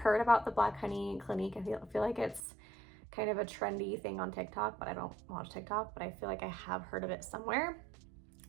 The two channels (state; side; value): drops out; left; at 2.4 s